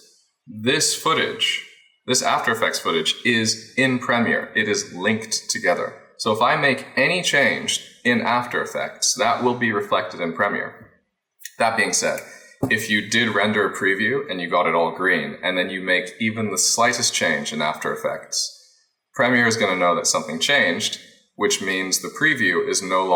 this footage, this After Effects footage is in Premiere. It is linked together. So if I make any change in After Effects, that will be reflected in Premiere. That being said, if you did render a preview and you got it all green, and then you make even the slightest change in After Effects, Premiere is going to know that something changed, which means the preview is no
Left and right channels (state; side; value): identical; both; correlation 1.00